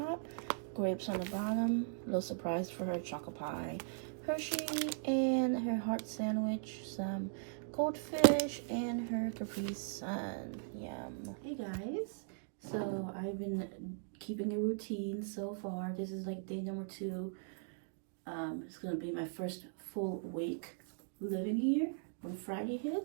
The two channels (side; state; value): left; silent; digital silence